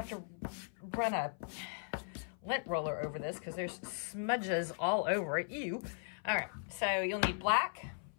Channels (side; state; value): right; silent; 52 dB below the other